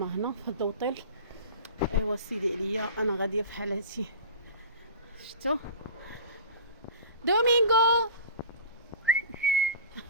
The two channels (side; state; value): both; inverted; correlation -0.34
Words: في الدوطيل. ايوا سيدي عليا انا غاديه في حالتي. شفتوا دومينغو؟